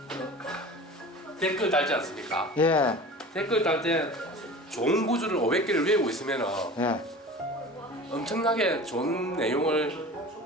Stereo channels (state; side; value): normal; both; correlation 0.38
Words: 댓글 달지 않습니까? 예, 댓글 달 때 좋은 구조를 500개를 외우고 있으면은 예. 엄청나게 좋은 내용을